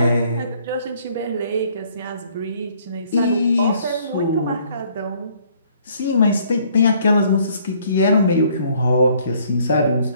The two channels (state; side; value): inverted; both; correlation -0.62